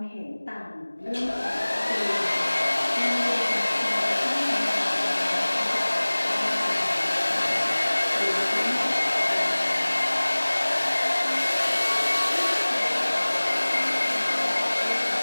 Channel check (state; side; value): inverted; both; correlation -1.00